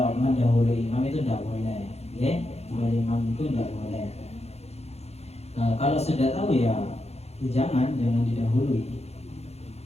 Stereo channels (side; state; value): right; late; 0.31 ms